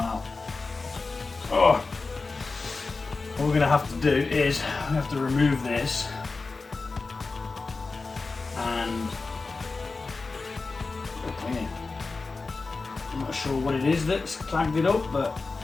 Oh. What we're going to have to do is we have to remove this and clean it. I'm not sure what it is that's clagged it up, but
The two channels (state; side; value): quieter; right; 3.9 dB